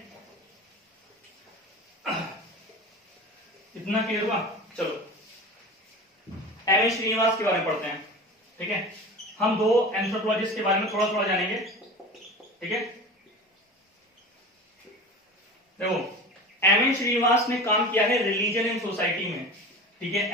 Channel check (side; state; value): both; normal; correlation 0.34